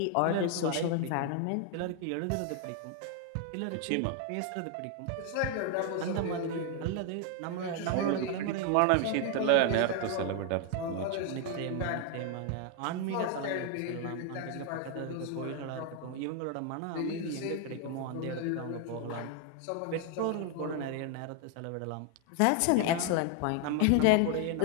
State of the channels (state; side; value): different; both; correlation 0.00